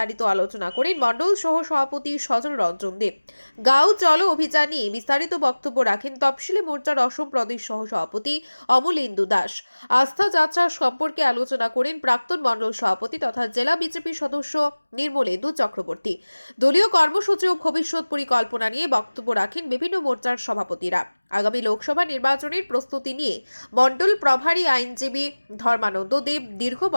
আলোচনা করেন মণ্ডল সহ সভাপতি সজল রঞ্জন দেব। গাঁও চলো অভিযান নিয়ে বিস্তারিত বক্তব্য রাখেন তফসিলি মোর্চার অসম প্রদেশ সহ সভাপতি অমলেন্দু দাস। আস্থা যাত্রা সম্পর্কে আলোচনা করেন প্রাক্তন মণ্ডল সভাপতি তথা জেলা বিজেপি সদস্য নির্মলেন্দু চক্রবর্তী। দলীয় কর্মসূচি ও ভবিষ্যৎ পরিকল্পনা নিয়ে বক্তব্য রাখেন বিভিন্ন মোর্চার সভাপতিরা। আগামী লোকসভা নির্বাচনের প্রস্তুতি নিয়ে মণ্ডল প্রভারী আইনজীবী ধর্মানন্দ দেব দীর্ঘ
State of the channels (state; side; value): inverted; both; correlation -1.00